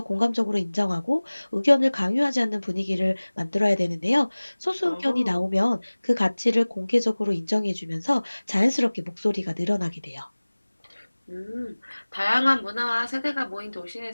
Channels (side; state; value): both; inverted; correlation -1.00